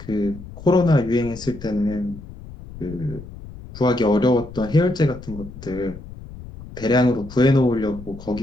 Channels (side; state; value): left; noise; rumble, 15 dB below the sound